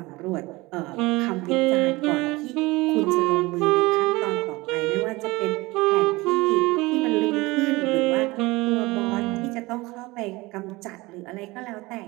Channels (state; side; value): quieter; left; 21.9 dB